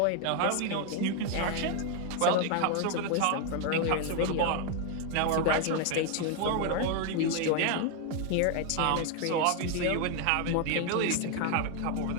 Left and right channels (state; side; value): different; both; correlation 0.01